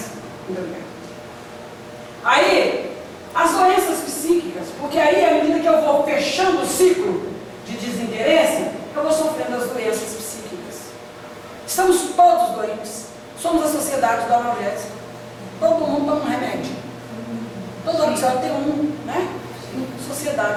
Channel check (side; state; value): both; identical; correlation 1.00